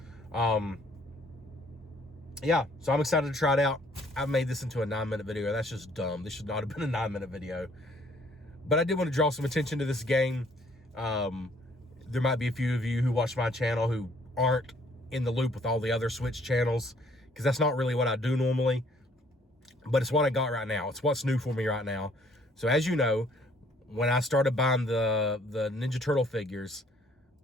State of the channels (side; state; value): both; normal; correlation 0.62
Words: Yeah, so I'm excited to try it out. I've made this into a 9-minute video. That's just dumb. This should not have been a 9-minute video. But I did want to draw some attention to this game. There might be a few of you who watch my channel who aren't in the loop with all the other Switch channels, because that's not really what I do normally. But it's what I got right now. It's what's new for me right now. So as you know, when I started buying the Ninja Turtle figures,